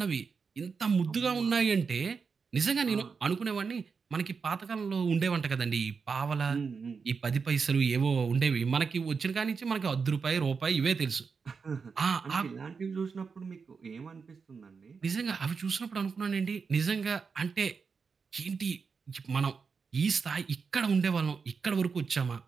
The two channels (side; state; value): left; quieter; 5.4 dB